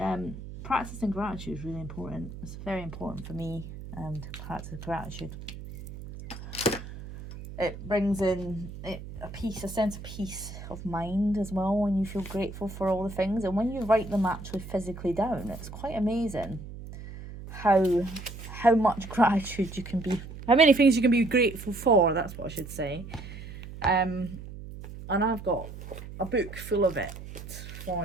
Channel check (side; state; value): right; noise; hum, 12 dB below the sound